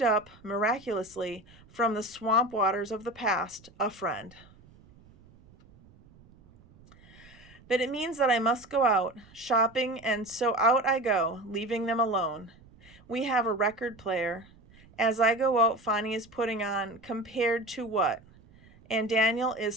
up miraculously from the swamp waters of the past a friend. But it means that I must go out shopping, and so out I go, leaving them alone. We have a record player. As I go out, Fonnie is putting on Compared to What? And Daniel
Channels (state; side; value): noise; right; rumble, 25 dB below the sound